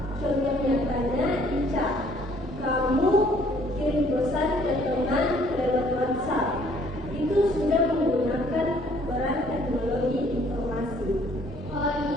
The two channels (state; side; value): normal; both; correlation 0.60